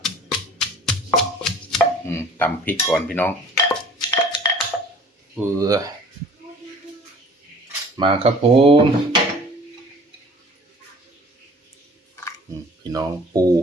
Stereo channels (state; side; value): normal; both; correlation 0.48